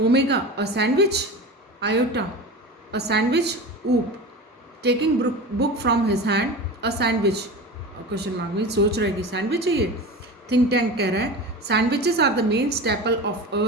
a sandwich. Iota, a sandwich. Oop, taking book from his hand, a sandwich. Question mark में सोच रहा है कि सैंडविच है ये. थिंक टैंक कह रहा है sandwiches are the main staple of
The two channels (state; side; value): normal; both; correlation 0.30